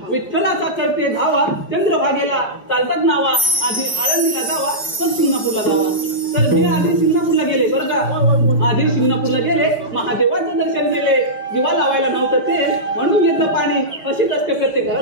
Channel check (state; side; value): late; right; 4.9 ms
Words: धावा चंद्रभागेला चालतात नावा आधी आळंदीला जावा पण सिंगापूरला जावा तर मी आधी सिंगापूरला गेले बरं का आधी सिंगापूरला गेले महादेवाचं दर्शन दिले दिवा लावायला नव्हतं ते म्हणून घेतलं पाणी अशीच असते प्रत्येक